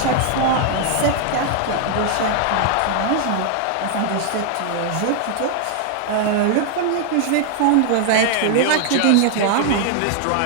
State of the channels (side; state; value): both; different; correlation 0.00